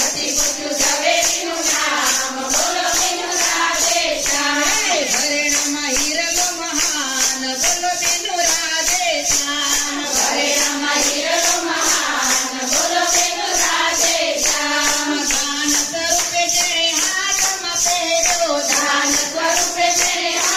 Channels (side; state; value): both; identical; correlation 1.00